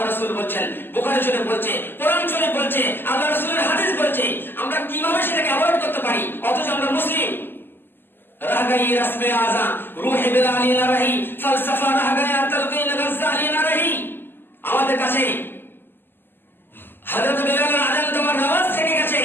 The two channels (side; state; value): right; late; 0.096 ms